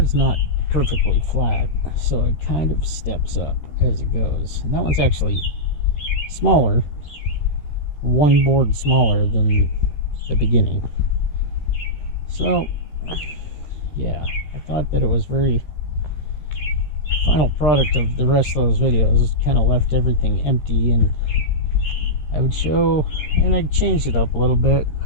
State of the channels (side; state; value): right; late; 14 ms